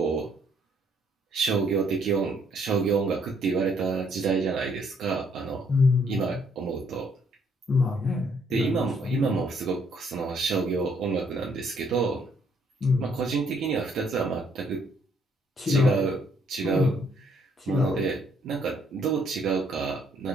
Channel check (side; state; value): both; normal; correlation 0.67